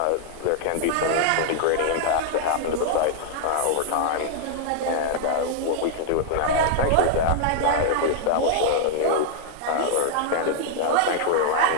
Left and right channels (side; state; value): both; different; correlation -0.01